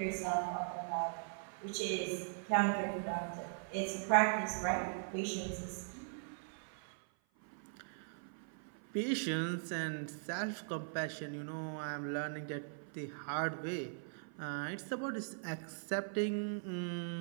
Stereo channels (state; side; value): silent; left; 51 dB below the other